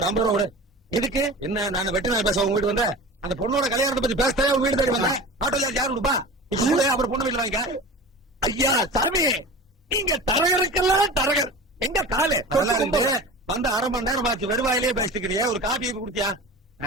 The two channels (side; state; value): both; normal; correlation 0.35